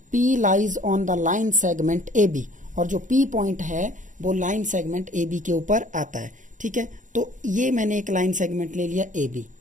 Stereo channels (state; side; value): late; left; 0.37 ms